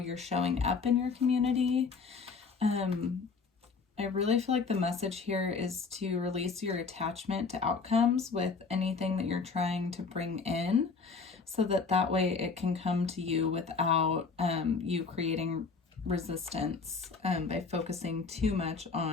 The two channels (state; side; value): quieter; right; 4.8 dB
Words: showing up in your community. I really feel like the message here is to release your attachment to outcomes with anything that you're trying to bring in, so that way it can come to you without you creating resistance by focusing too much